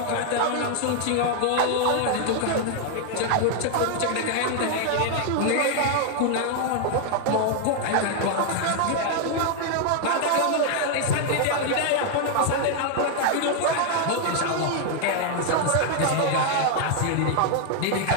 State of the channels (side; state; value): both; different; correlation 0.00